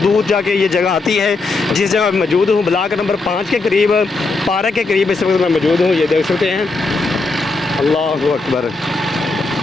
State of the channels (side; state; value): right; quieter; 3.6 dB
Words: जाके ये जगह आती है। जिस जगह मौजूद हूँ, ब्लॉक नंबर 5 के करीब, पार्क के करीब इस वक्त मैं मौजूद हूँ। ये देख सकते हैं, अल्लाहु अकबर।